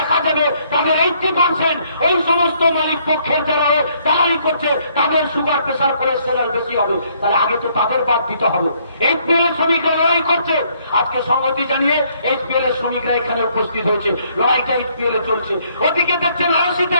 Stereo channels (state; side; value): inverted; both; correlation -0.67